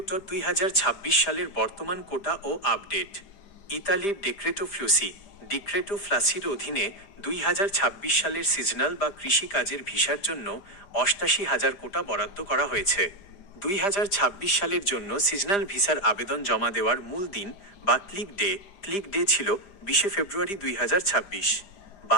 সালের বর্তমান কোটা ও আপডেট। ইতালির ডিক্রেটো ফ্লাসির অধীনে 2026 সালের সিজনাল বা কৃষি কাজের ভিসার জন্য 88,000 কোটা বরাদ্দ করা হয়েছে। 2026 সালের জন্য সিজনাল ভিসার আবেদন জমা দেওয়ার মূল দিন বা ক্লিক ডে ছিল 20 ফেব্রুয়ারি 2026।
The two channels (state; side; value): late; right; 5.0 ms